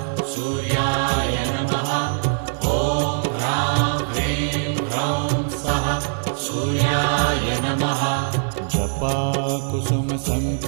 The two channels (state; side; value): silent; left; 55 dB below the other